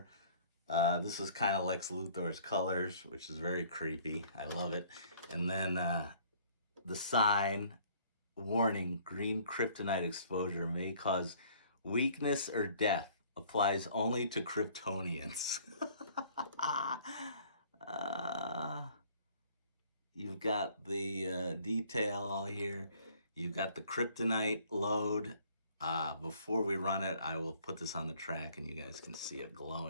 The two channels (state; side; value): inverted; both; correlation -0.56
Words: This is kind of Lex Luthor's colors, which is very creepy. I love it. And then the sign, warning, green kryptonite exposure may cause weakness or death. Applies only to Kryptonians. You've got the detail all here. You've got the kryptonite load. Before we run it, I will put this on the track and you guys can see it